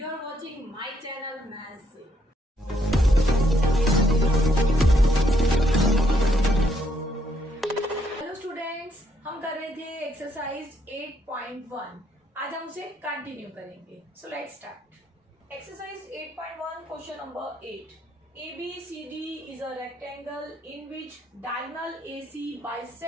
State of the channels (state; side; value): normal; both; correlation 0.72